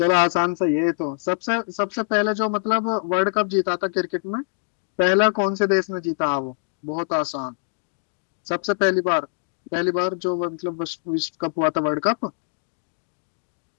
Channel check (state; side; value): silent; right; digital silence